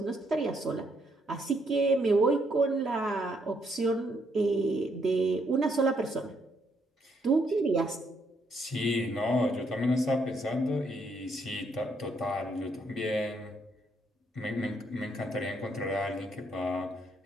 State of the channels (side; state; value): both; normal; correlation 0.73